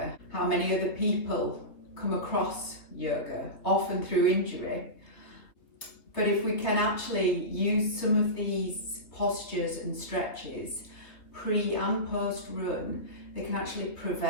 How many other people come across yoga, often through injury. But if we can actually use some of these postures and stretches pre and post run, they can actually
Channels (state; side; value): late; right; 3.1 ms